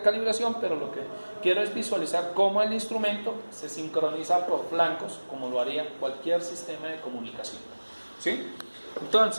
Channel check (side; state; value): both; inverted; correlation -1.00